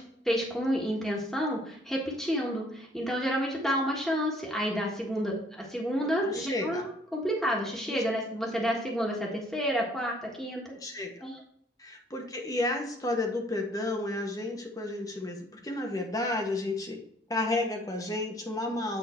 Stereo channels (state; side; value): normal; both; correlation 0.61